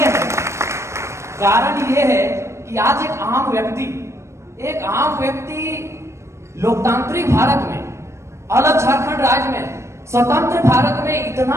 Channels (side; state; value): left; late; 0.13 ms